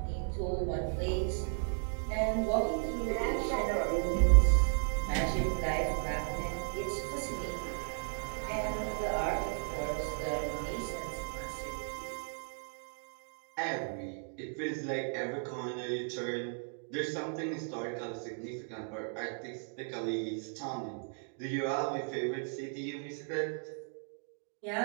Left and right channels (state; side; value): silent; left; 54 dB below the other